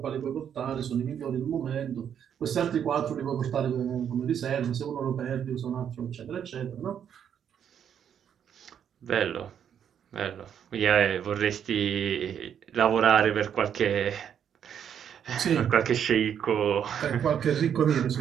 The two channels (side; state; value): left; quieter; 8.7 dB